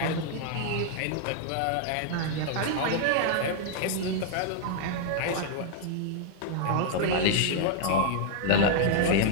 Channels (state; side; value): different; both; correlation 0.00